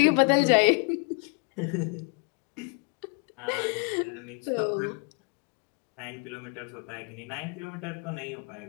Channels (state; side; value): quieter; right; 36.9 dB